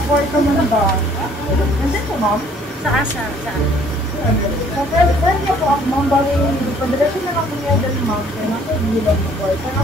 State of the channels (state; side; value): normal; both; correlation 0.59